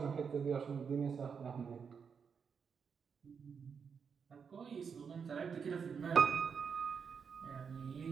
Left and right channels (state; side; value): quieter; left; 6.3 dB